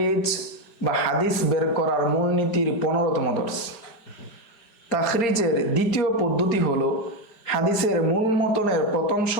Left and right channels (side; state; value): right; late; 5.0 ms